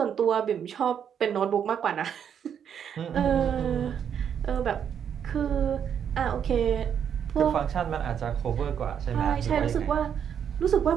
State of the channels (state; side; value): quieter; left; 8.3 dB